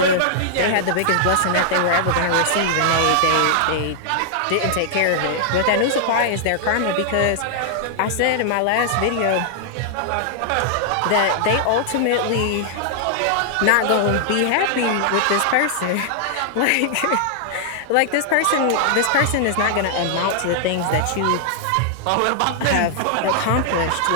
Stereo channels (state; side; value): different; both; correlation -0.01